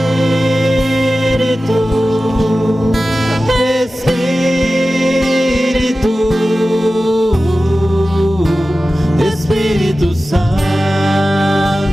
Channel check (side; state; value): both; normal; correlation 0.95